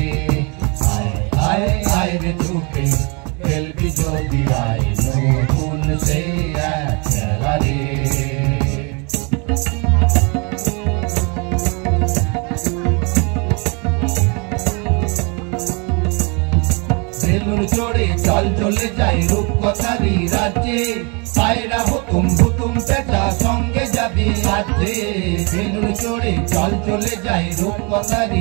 আয় আয় আয় রে ছুটে ফেলবি যদি আয় নতুন সে এক খেলা রে। বেলুন চড়ে চল চলে যাই রূপকথারই রাজ্যে, পায়রা হুতুম হুতুম পেঁচা সঙ্গে যাবি রাজ্যে। বেলুন চড়ে চল চলে যাই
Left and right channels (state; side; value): quieter; left; 32.4 dB